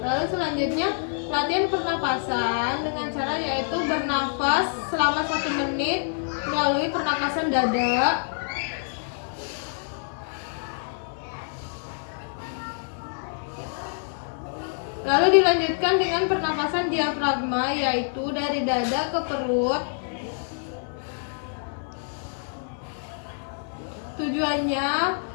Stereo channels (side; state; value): right; silent; digital silence